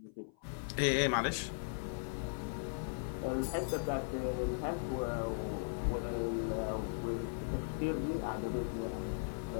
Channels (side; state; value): right; silent; 52 dB below the other